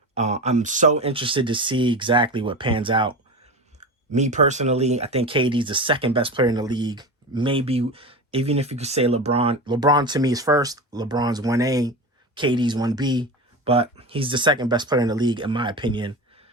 I'm so interested to see exactly what pans out. Me personally, I think KD's the second best player in the league. Maybe even if you could say LeBron. LeBron to me is first. LeBron's 1A. KD's 1B. But he's the second best player in the league, in my opinion.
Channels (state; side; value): normal; both; correlation 0.26